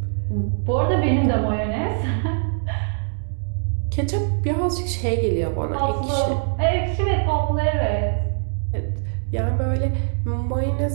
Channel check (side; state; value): left; silent; 64 dB below the other